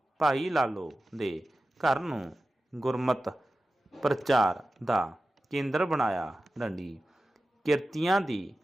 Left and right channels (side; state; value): both; normal; correlation 0.94